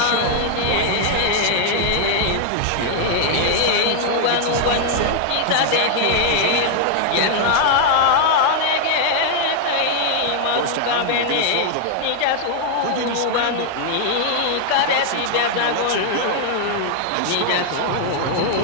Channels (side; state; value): both; different; correlation 0.00